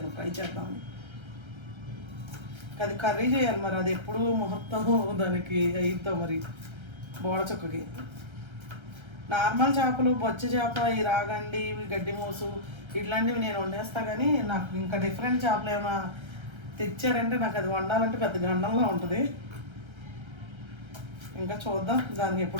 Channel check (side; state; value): left; late; 1.3 ms